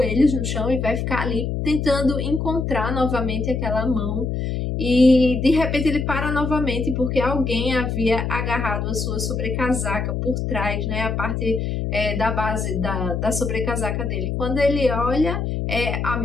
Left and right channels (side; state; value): left; noise; hum, 2 dB below the sound